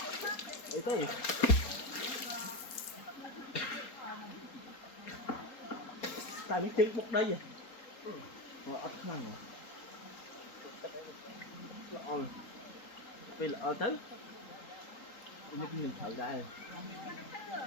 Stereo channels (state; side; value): late; right; 4.3 ms